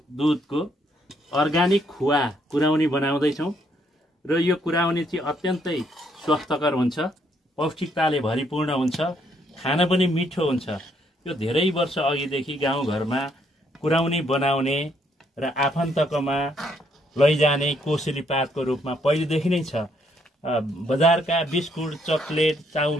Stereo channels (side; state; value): both; normal; correlation 0.71